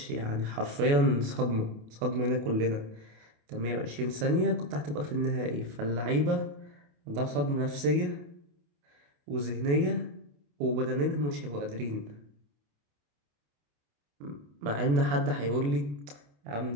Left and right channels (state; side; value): late; left; 28 ms